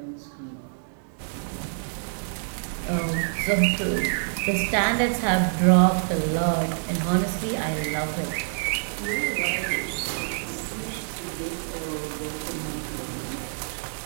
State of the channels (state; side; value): silent; left; digital silence